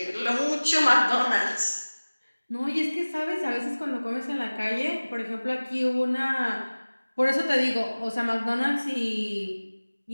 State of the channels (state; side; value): inverted; both; correlation -1.00